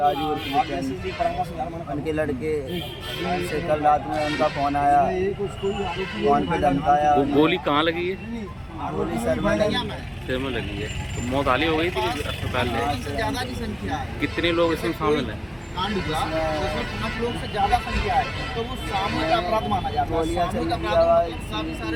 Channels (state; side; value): identical; both; correlation 1.00